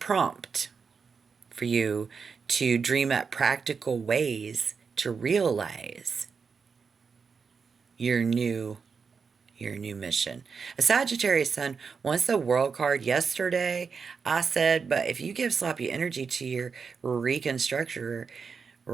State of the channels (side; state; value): left; quieter; 5.5 dB